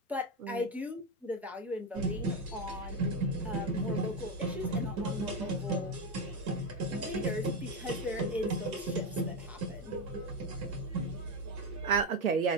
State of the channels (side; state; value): both; normal; correlation 0.11